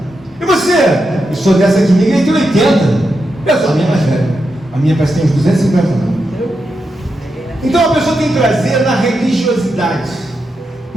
E você? Eu sou dessa aqui, minha igreja tem 80. Eu sou a minha mais velha. A minha parece que tem uns 250 anos. Então a pessoa tem que trazer na religiosidade,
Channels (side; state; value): both; normal; correlation 0.86